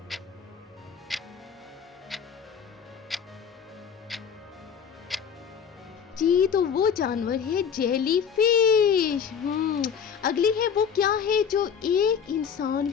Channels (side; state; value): right; quieter; 7.2 dB